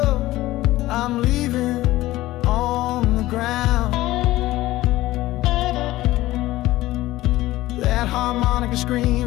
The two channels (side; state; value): right; quieter; 16.8 dB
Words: I'm leaving on the ground. That harmonica